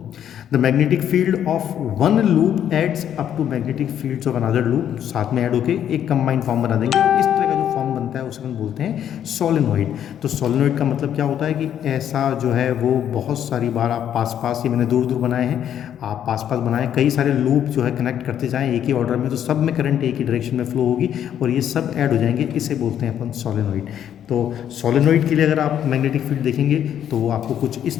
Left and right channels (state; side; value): quieter; right; 9.9 dB